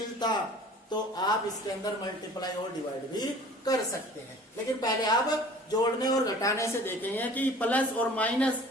तो आप इसके अंदर मल्टीप्लाई और डिवाइड भी कर सकते हैं। लेकिन पहले आप जोड़ने और घटाने से देखेंगे कि प्लस और माइनस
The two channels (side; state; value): both; normal; correlation 0.47